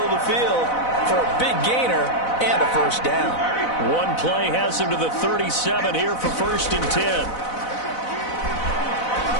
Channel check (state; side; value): late; right; 4.0 ms